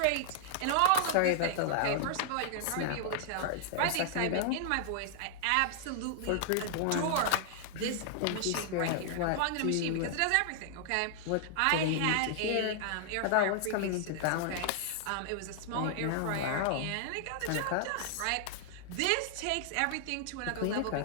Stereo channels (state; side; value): different; both; correlation -0.01